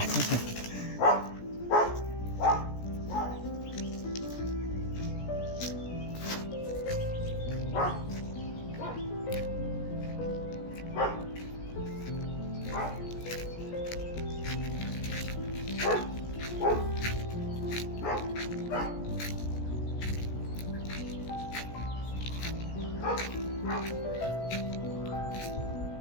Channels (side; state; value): right; late; 17 ms